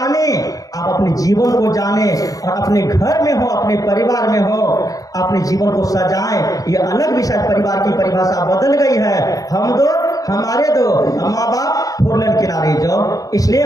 आप अपने जीवन को जाने और अपने घर में हो, अपने परिवार में हो, अपने जीवन को सजाएं। ये अलग विषय, परिवार की परिभाषा बदल गई है। हम दो, हमारे दो, माँ बाप, 4 लेन किनारे जाओ। इसलिए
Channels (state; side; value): late; right; 0.17 ms